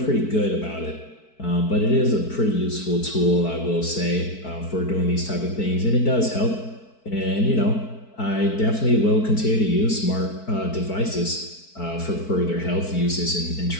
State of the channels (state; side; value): late; right; 4.6 ms